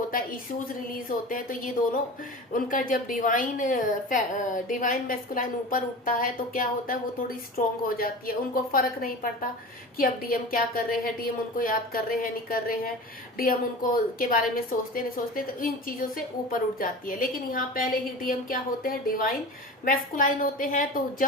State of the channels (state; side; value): normal; both; correlation 0.33